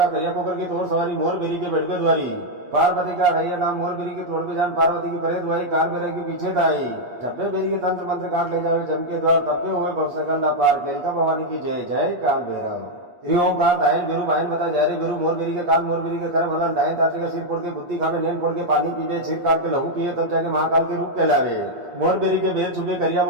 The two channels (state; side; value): late; left; 8.4 ms